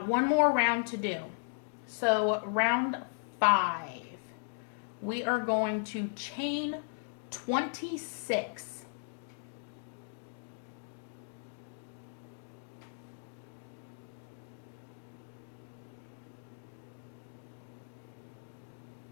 one more round to do. So round 5. We are going to chain 26.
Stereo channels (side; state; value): right; silent; digital silence